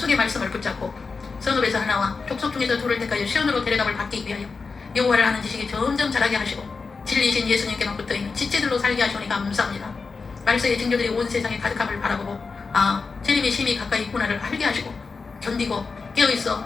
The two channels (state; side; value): quieter; right; 4.6 dB